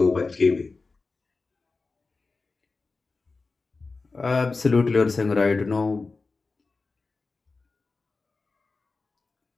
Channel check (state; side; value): quieter; right; 3.9 dB